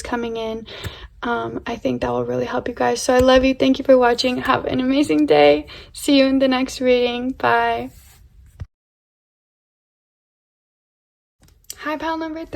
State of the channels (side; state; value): both; identical; correlation 1.00